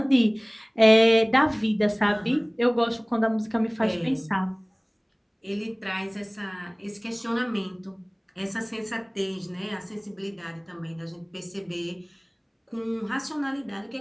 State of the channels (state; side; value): identical; both; correlation 1.00